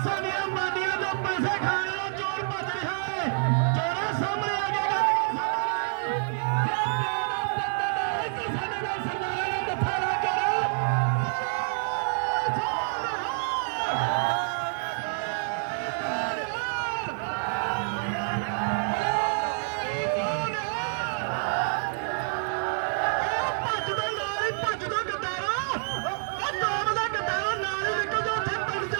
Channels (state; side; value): silent; left; digital silence